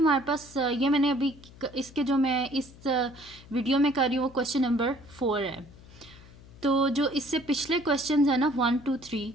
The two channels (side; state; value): left; noise; hum, 21 dB below the sound